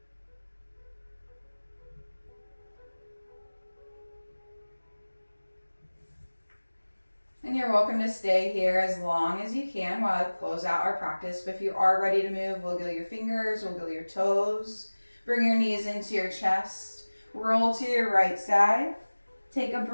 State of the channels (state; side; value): inverted; both; correlation -1.00